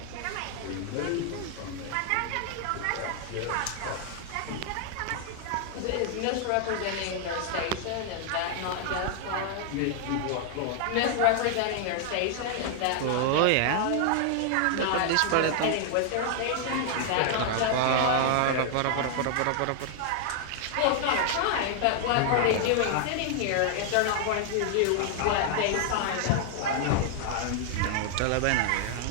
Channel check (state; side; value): different; both; correlation 0.00